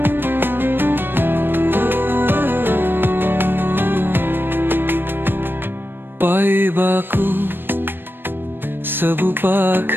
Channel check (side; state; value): left; late; 0.098 ms